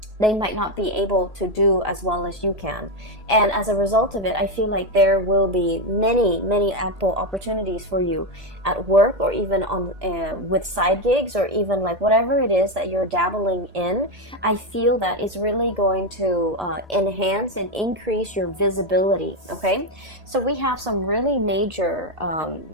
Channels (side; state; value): left; late; 1.8 ms